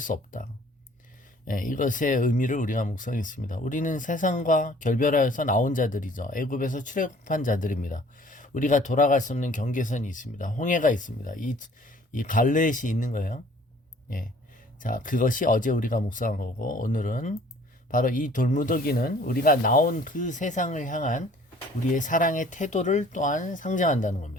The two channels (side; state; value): both; normal; correlation 0.54